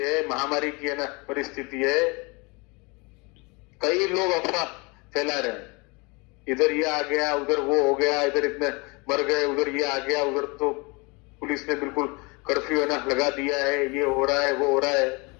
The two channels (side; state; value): right; quieter; 28.3 dB